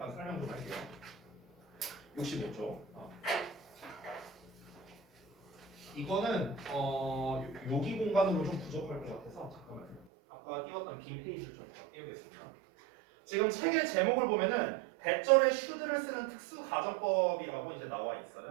설명 좀 할게요. 65쪽. 이거는 여기 공간으로 좀 부족할 것 같아서 잠깐만요. 아까 띄웠던 빈 페이지를 좀 띄우겠습니다. 지금 책의 제목을 보면은 대절에 should를 쓰는 특수 가정법이라고 이제 나와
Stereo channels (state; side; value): drops out; left; at 10.1 s